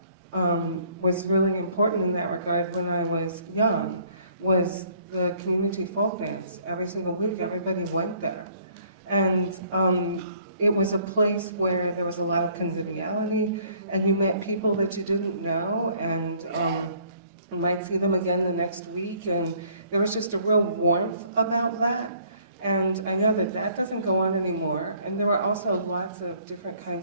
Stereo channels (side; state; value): both; inverted; correlation -0.61